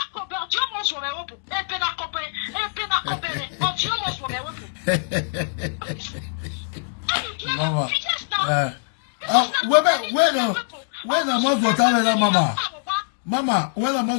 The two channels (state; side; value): silent; right; digital silence